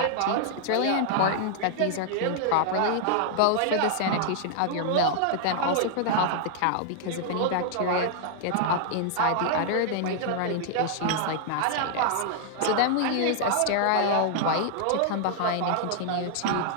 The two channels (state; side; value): different; both; correlation -0.01